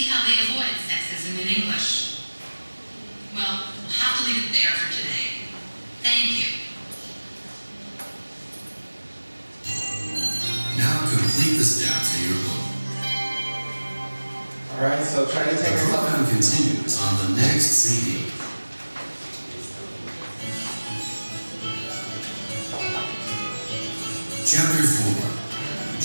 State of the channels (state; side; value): inverted; both; correlation -1.00